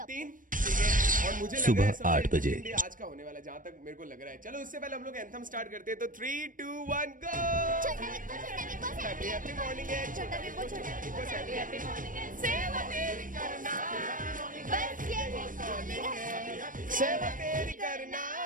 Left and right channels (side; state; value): left; late; 0.39 ms